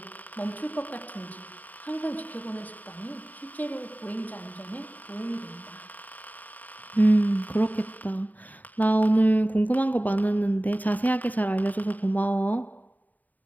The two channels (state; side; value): late; right; 0.080 ms